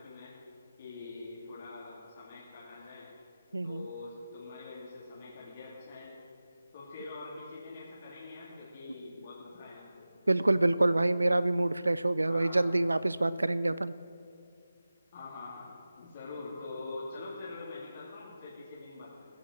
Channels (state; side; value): inverted; both; correlation -0.97